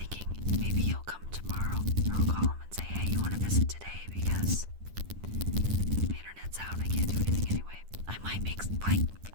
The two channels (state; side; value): late; left; 10 ms